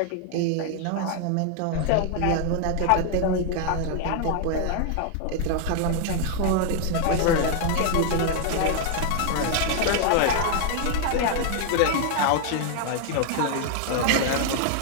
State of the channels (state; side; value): different; both; correlation 0.00